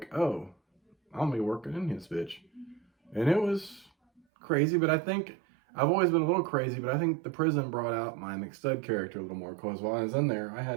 oh, I'll be working in this bitch. And it was crazy, but I think I've always been a little crazy, but I think the prison brought out my McStud character a little more, because while I was in there, I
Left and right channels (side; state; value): left; drops out; at 4.2 s